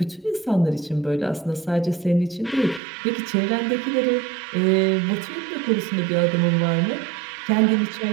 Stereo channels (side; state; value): left; drops out; at 2.8 s